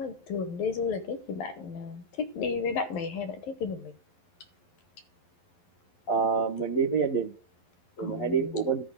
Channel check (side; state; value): right; late; 11 ms